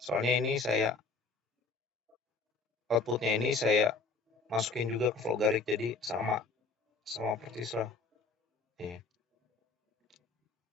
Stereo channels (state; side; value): quieter; right; 4.1 dB